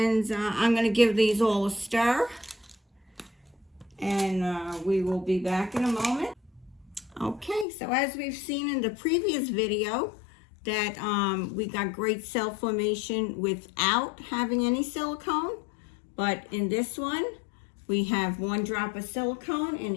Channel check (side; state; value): right; drops out; at 7.7 s